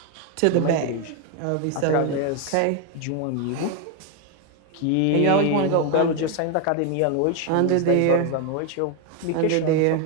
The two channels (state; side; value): different; both; correlation 0.01